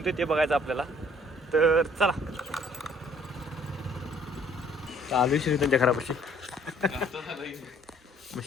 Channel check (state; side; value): normal; both; correlation 0.59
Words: ते बघायचं आपल्याला. तर चला चालू श्रीरथांच्या घरापाशी. मग